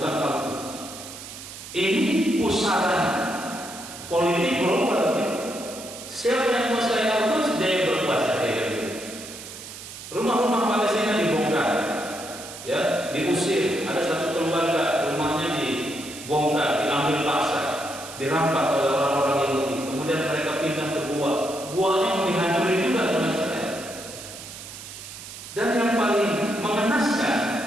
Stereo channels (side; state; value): right; noise; hiss, 13 dB below the sound